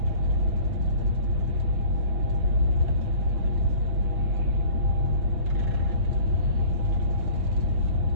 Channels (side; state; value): left; late; 5.9 ms